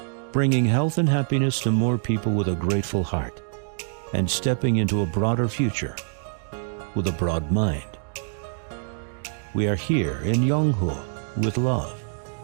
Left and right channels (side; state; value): left; silent; digital silence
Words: bringing health and happiness to more people with a grateful heart, and stepping into a broader future with a broad mind. We are here in Yonghua with love.